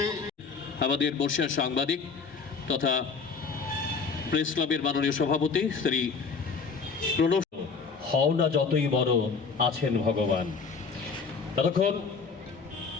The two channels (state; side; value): quieter; right; 5.1 dB